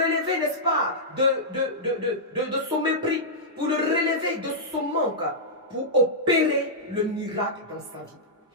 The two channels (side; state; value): both; normal; correlation -0.12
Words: n'est-ce pas, de son mépris, pour le relever de son manque, pour opérer le miracle dans sa vie.